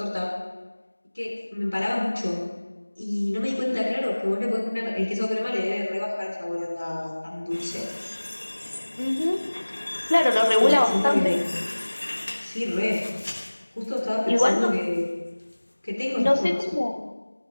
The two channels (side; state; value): both; inverted; correlation -1.00